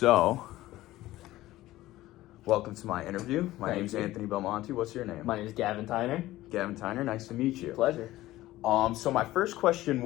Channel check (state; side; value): quieter; right; 16.3 dB